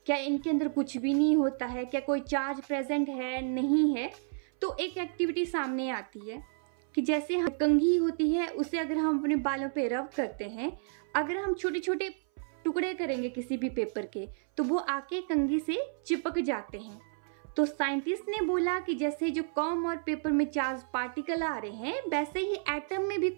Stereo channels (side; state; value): left; silent; 57 dB below the other